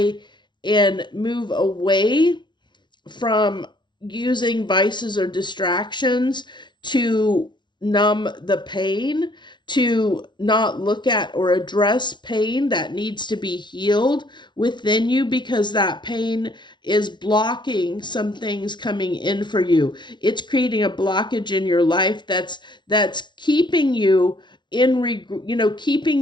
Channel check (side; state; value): right; late; 0.22 ms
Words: and move away from using vices or distractions to numb the pain, to not look at or address pain that needs to be healed within you, because that pain is blocking some things coming in for you. It's creating a blockage in your life that's keeping you